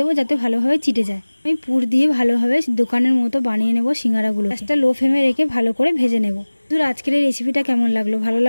যাতে ভালোভাবে চিটে যায়। আমি পুর দিয়ে ভালোভাবে দোকানের মতো বানিয়ে নেব সিঙ্গারাগুলো। গ্যাসটা লো ফ্লেমে রেখে ভালো করে ভেজে নেব। বন্ধুরা, আজকের এই রেসিপিটা কেমন লাগলো? ভালো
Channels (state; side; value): inverted; both; correlation -1.00